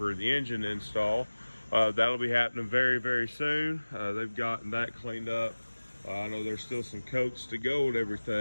the engine install. That'll be happening very, very soon. They've gotten that cleaned up. I know there's still some coats to go and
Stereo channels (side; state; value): both; inverted; correlation -1.00